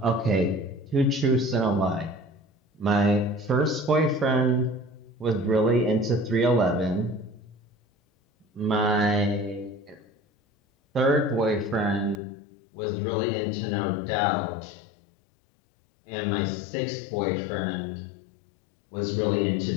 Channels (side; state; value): right; drops out; at 12.2 s